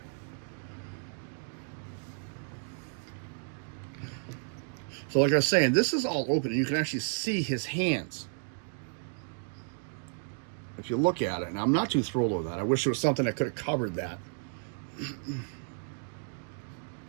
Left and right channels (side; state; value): left; silent; 56 dB below the other